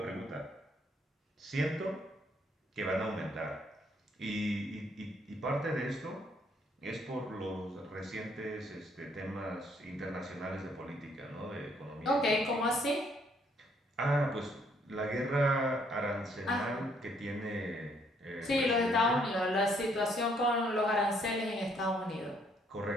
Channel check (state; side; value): normal; both; correlation 0.68